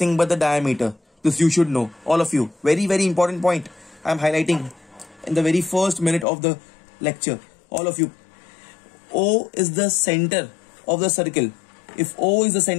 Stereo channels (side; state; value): right; drops out; at 6.2 s